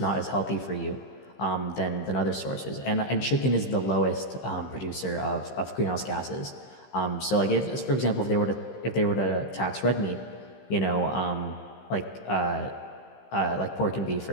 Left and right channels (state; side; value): late; right; 15 ms